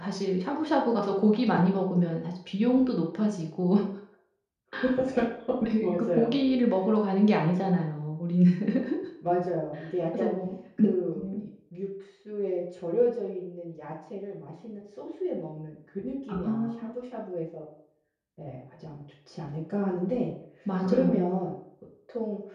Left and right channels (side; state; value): both; identical; correlation 1.00